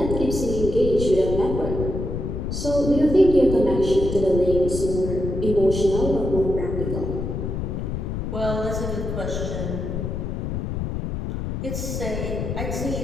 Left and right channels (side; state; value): left; noise; rumble, 3 dB below the sound